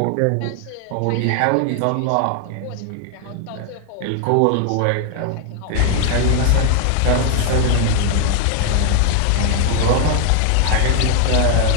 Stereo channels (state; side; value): different; both; correlation 0.00